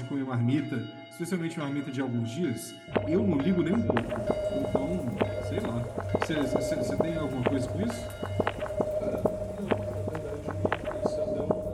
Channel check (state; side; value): identical; both; correlation 1.00